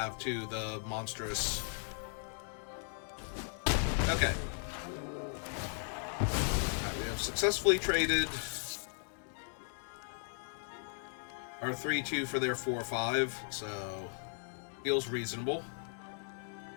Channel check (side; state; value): right; silent; 53 dB below the other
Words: too, the monstrous... Okay. Right, we have successfully traded our 3-2 for their 4-5, so feels reasonable.